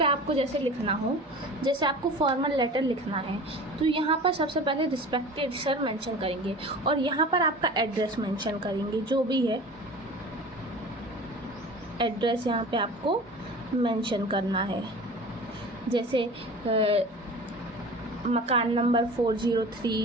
आपको जैसे लिखना हो, जैसे आपको फॉर्मल लेटर लिखना है, तो यहाँ पर सबसे पहले रिस्पेक्टेड सर मेंशन करेंगे और यहाँ पर आपका एड्रेस मेंशन करेंगे, जो भी है एड्रेस यहाँ पे आपको मेंशन करना है। जैसे मकान नंबर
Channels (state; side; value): normal; both; correlation 0.38